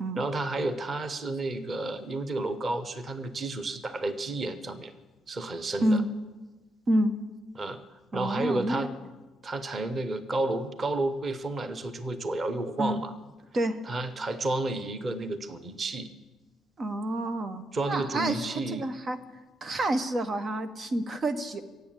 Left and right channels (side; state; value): both; normal; correlation 0.83